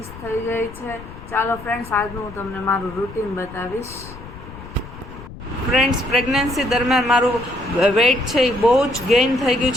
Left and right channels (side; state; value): left; noise; rumble, 15 dB below the sound